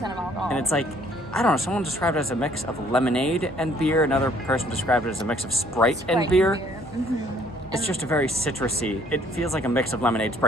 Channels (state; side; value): normal; both; correlation 0.61